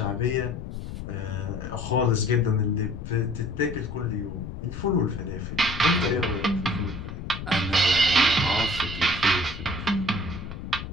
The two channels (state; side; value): noise; left; rumble, 8 dB below the sound